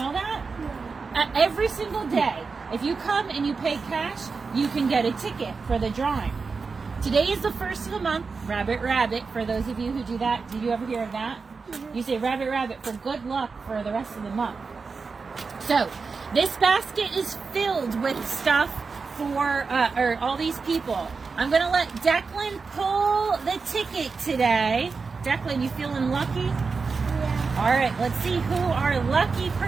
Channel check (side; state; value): left; quieter; 4.7 dB